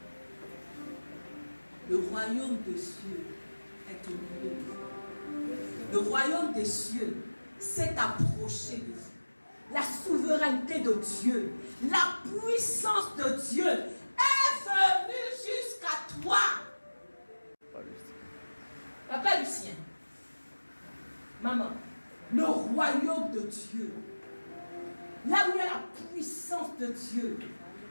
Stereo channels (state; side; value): inverted; both; correlation -1.00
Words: Le royaume des cieux est au milieu de vous. Le royaume des cieux s'est approché de vous. La souveraineté de Dieu, la puissance de Dieu est venue jusqu'à toi. Papa Lucien, maman, le royaume de Dieu, là où il y a la puissance de Dieu,